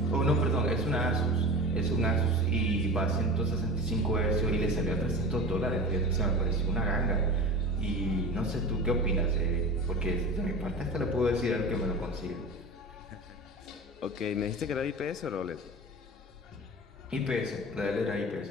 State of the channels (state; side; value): normal; both; correlation 0.32